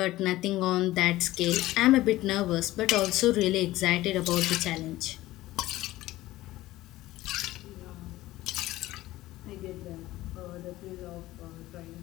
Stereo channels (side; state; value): right; quieter; 16.7 dB